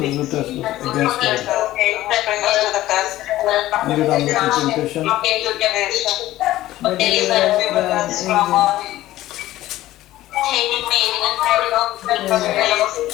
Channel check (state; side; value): quieter; right; 15.3 dB